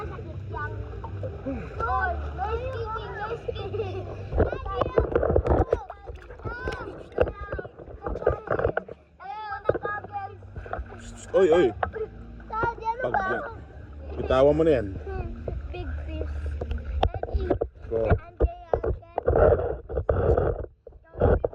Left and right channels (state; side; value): identical; both; correlation 1.00